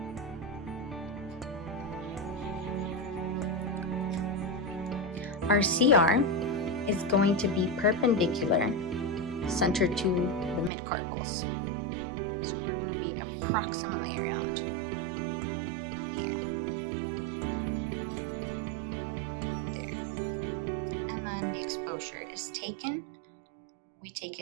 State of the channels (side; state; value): left; drops out; at 10.7 s